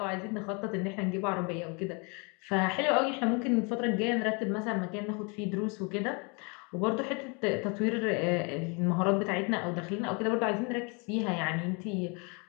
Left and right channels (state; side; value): quieter; right; 32.3 dB